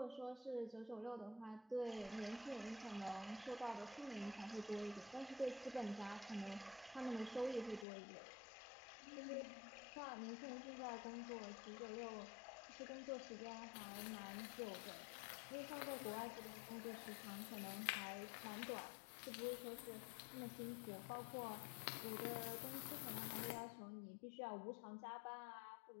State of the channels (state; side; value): drops out; right; at 7.9 s